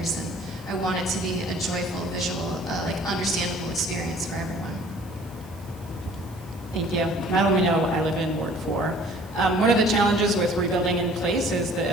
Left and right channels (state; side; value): noise; right; hiss, 25 dB below the sound